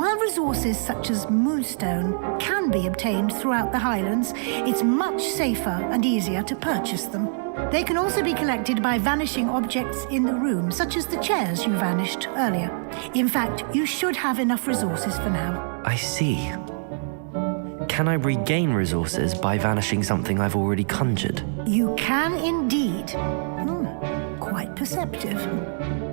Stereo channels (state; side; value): silent; left; digital silence